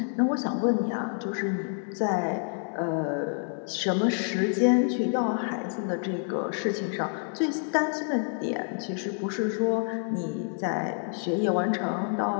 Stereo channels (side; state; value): right; silent; 59 dB below the other